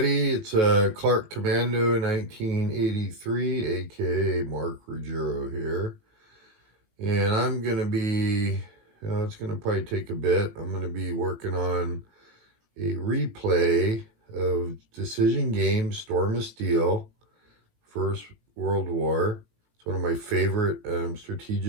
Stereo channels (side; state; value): left; late; 18 ms